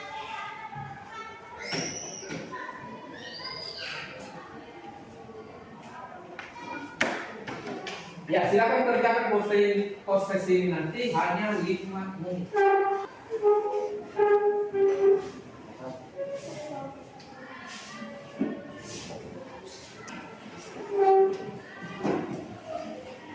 Ya, silakan kerjakan post test ini nanti hanya 5 menit.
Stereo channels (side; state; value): both; identical; correlation 1.00